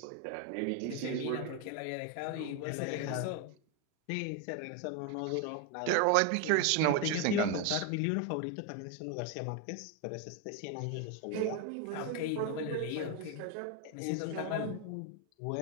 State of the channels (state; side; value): different; both; correlation 0.02